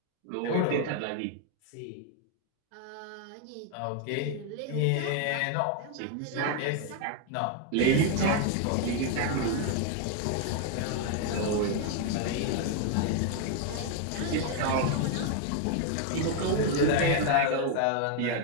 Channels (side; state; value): both; different; correlation 0.00